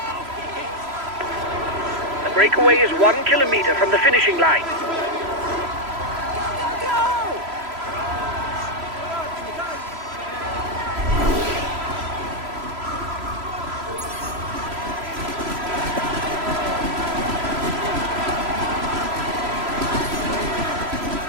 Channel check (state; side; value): late; left; 3.0 ms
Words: The breakaway is 1 kilometer from the finishing line.